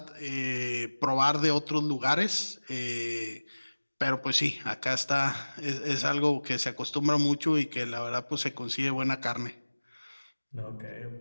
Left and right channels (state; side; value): inverted; both; correlation -1.00